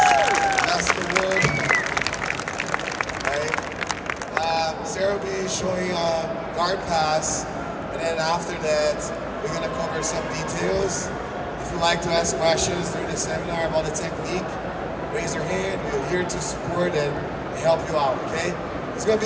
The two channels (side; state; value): both; identical; correlation 1.00